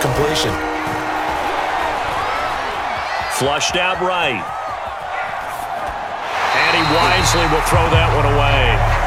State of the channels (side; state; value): both; identical; correlation 1.00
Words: Flushed out right. And he wisely will throw that one away.